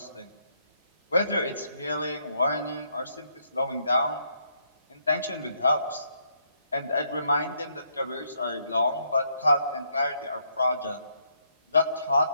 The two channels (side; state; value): both; inverted; correlation -0.74